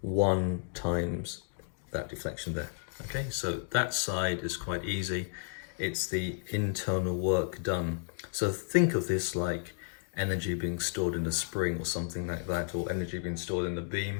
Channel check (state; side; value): silent; right; digital silence